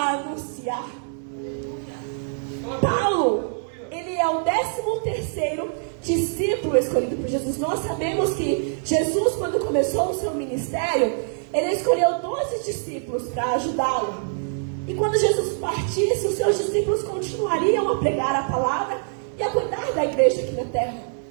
anunciar. Paulo, ele é o 13º discípulo escolhido por Jesus. Nós sabemos que Jesus, quando começou o seu ministério, ele escolheu 12 discípulos para ajudá-lo. E quando Jesus partisse, os seus discípulos continuariam a pregar a palavra e a cuidar da igreja aqui na terra.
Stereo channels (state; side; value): silent; left; digital silence